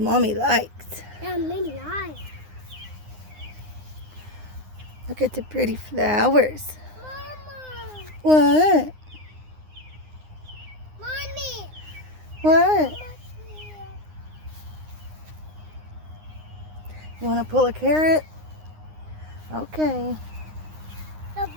likes. Yeah, many eyes. Look at the pretty flowers. Mama. What? Mommy. What? You want to pull a carrot? Okay.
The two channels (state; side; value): late; left; 9.7 ms